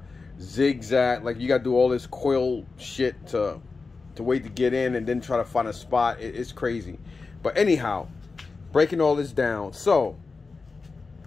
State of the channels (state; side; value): quieter; right; 4.2 dB